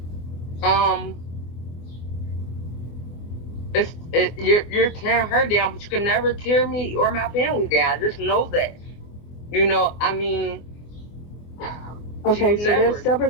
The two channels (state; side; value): late; right; 24 ms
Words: you're tearing her down, but you can never tear me or my family down. Just know that. I mean. Okay, so there's